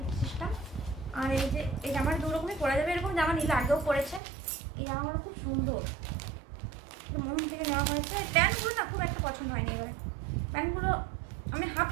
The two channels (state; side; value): drops out; left; at 4.2 s